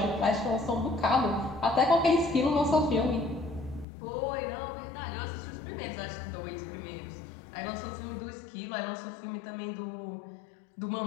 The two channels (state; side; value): drops out; right; at 3.9 s